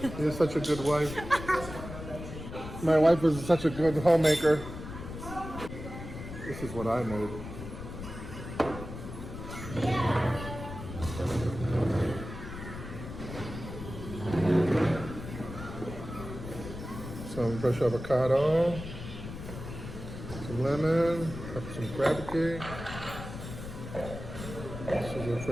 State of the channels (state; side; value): noise; left; rumble, 10 dB below the sound